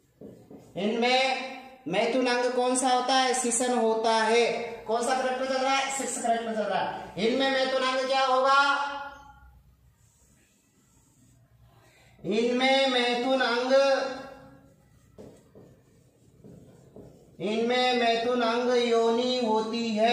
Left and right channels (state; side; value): identical; both; correlation 1.00